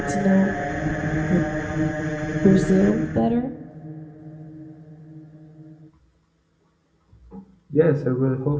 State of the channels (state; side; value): identical; both; correlation 1.00